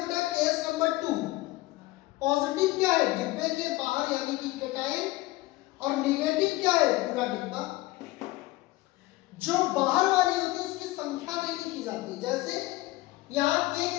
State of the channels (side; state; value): right; quieter; 19.1 dB